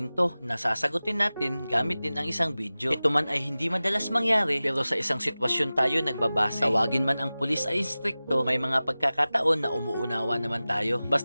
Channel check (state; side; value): inverted; both; correlation -0.97